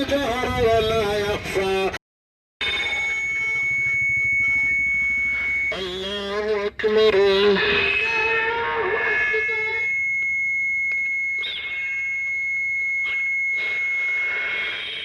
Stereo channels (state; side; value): identical; both; correlation 1.00